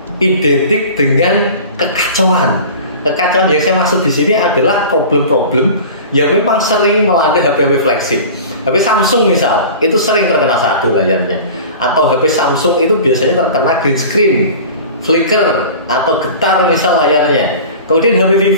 identik dengan kekacauan. Kekacauan yang saya maksud di sini adalah problem-problem yang memang sering melanda HP-HP flagship. HP Samsung misal, itu sering terkena sadu layarnya. Atau HP Samsung itu biasanya terkena green screen, flicker, atau getar misal layarnya. Kemudian HP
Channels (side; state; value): both; inverted; correlation -0.38